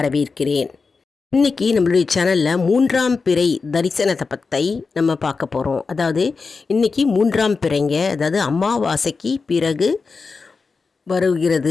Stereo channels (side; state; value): right; quieter; 4.6 dB